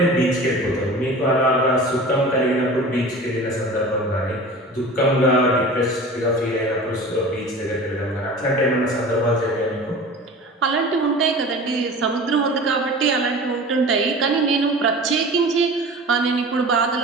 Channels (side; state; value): both; normal; correlation 0.38